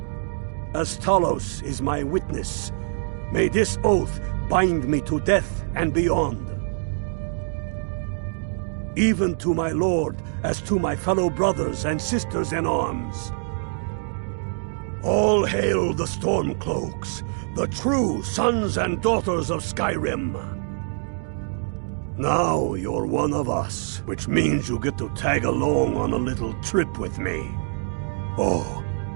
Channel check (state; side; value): silent; left; digital silence